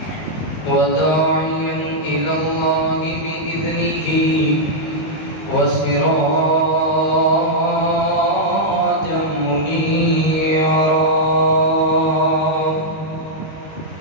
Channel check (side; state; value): right; late; 19 ms